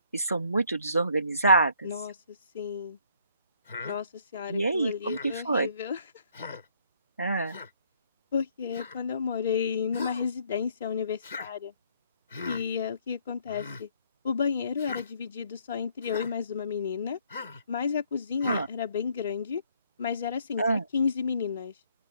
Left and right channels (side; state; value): both; inverted; correlation -0.65